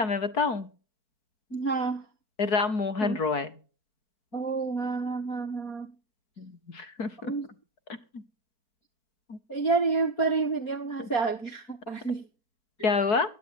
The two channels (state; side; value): late; right; 4.3 ms